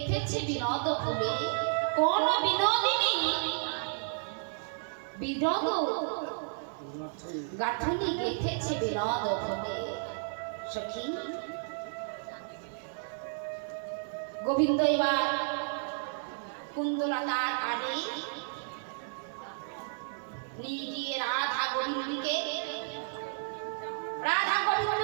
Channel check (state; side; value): silent; left; 56 dB below the other